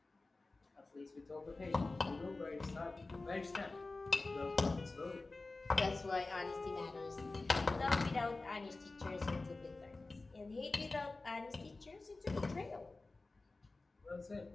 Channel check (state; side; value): quieter; right; 3.4 dB